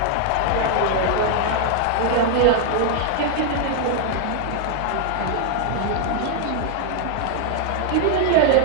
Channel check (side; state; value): both; different; correlation 0.00